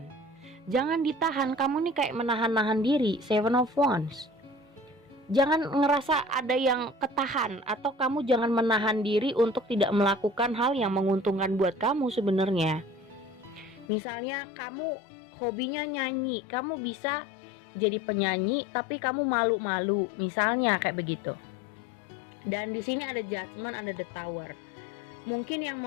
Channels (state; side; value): drops out; right; at 13.9 s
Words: Jangan ditahan. Kamu nih kayak menahan-nahan diri. Seven of Wands. Jangan ngerasa ada yang ketahan, atau kamu jangan menahan diri untuk tidak melakukan hal yang menguntungkan buat kamu sebenarnya. Misalnya kamu hobinya nyanyi, kamu bisa jadi penyanyi tapi kamu malu-malu, misalnya kayak begitu. Dan di sini ada Judgment, ada The Tower. Mungkin yang